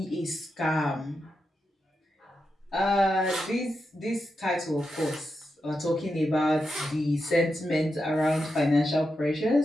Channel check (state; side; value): normal; both; correlation 0.87